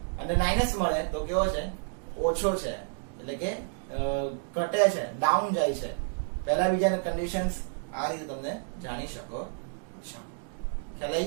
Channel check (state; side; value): silent; left; digital silence